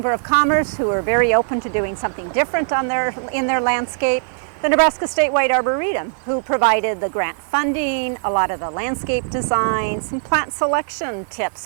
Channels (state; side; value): silent; left; 66 dB below the other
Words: of Commerce, who are very open to doing something different in their landscape. The Nebraska Statewide Arboretum, who provided the grant funding, a lot of the landscape design, some plant selection tips